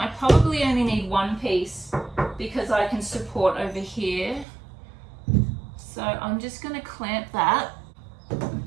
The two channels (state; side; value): drops out; left; at 4.5 s